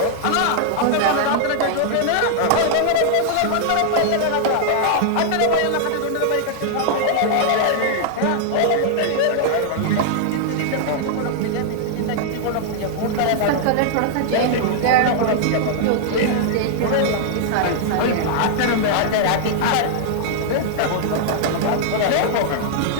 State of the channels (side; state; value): both; different; correlation -0.01